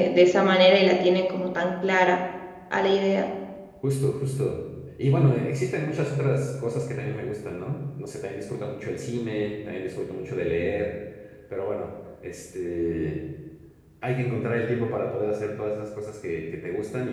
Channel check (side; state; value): both; identical; correlation 1.00